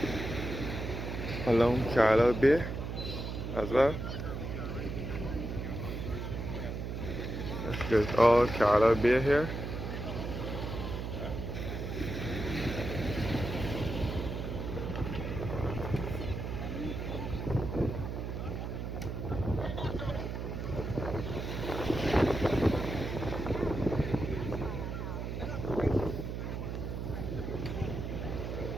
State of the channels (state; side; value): noise; right; hum, 4 dB below the sound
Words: along Carlisle Bay as well. There's all Carlisle Bay here.